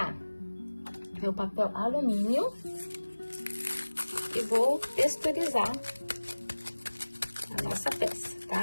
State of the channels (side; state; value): both; inverted; correlation -1.00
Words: meu papel alumínio e vou texturizar a nossa peça,